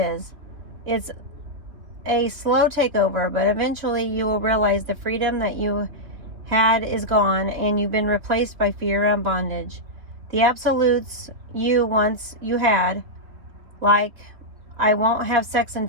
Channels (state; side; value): late; left; 3.5 ms